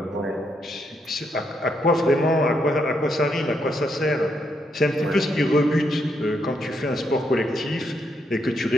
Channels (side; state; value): both; normal; correlation 0.78